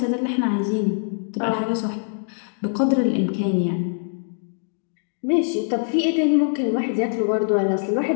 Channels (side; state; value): right; silent; digital silence